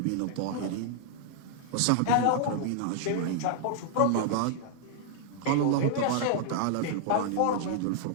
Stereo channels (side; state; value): both; different; correlation -0.01